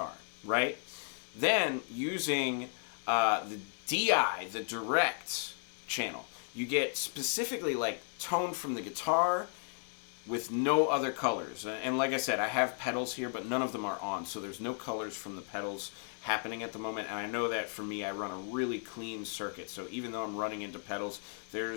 right? Then using the DI, the direct channel, you get specifically like tone from the guitar with no other colors. And like I said, I have pedals here, but none of them are on, so there's no colors from the pedals happening at the moment. And I know that for me, I run a really clean circuit, so even though I'm running into pedals,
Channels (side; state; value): right; silent; 55 dB below the other